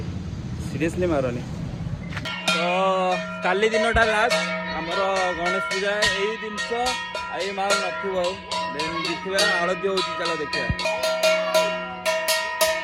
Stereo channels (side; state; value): both; identical; correlation 1.00